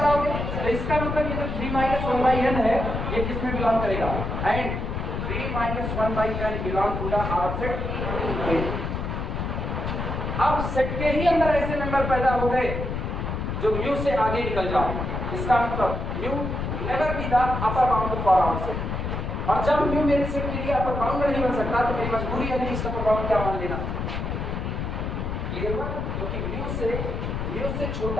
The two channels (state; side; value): noise; left; rumble, 3 dB below the sound